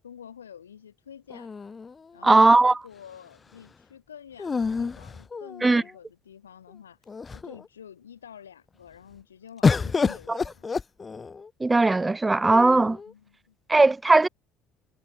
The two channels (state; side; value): normal; both; correlation 0.95